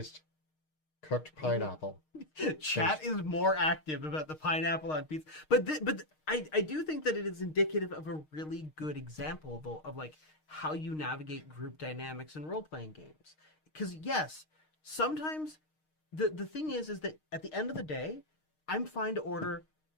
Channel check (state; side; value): late; right; 6.5 ms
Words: cooked pineapple. Chat is more active about the pineapple on pizza, but I do think that it is indicative of a really good example though of like how you navigate group dynamics in role playing games. Because yes, sometimes the thing is that at the end of the day, I'm fine to order.